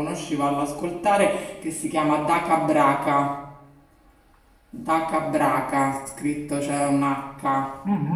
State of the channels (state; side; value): identical; both; correlation 1.00